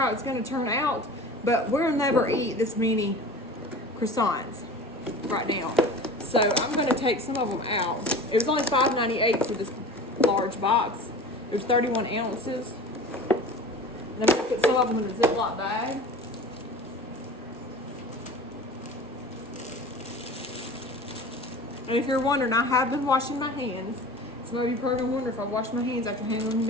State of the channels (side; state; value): both; normal; correlation 0.37